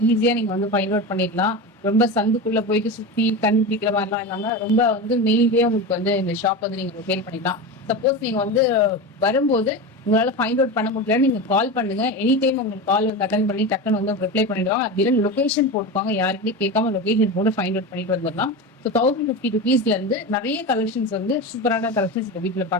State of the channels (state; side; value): normal; both; correlation 0.23